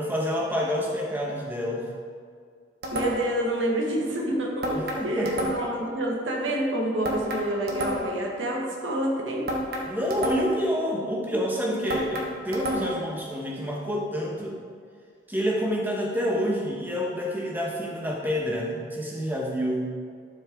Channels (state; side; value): normal; both; correlation 0.49